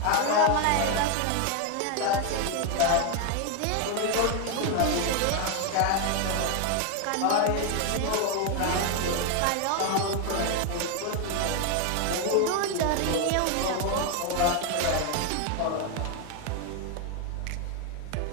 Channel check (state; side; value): different; both; correlation 0.01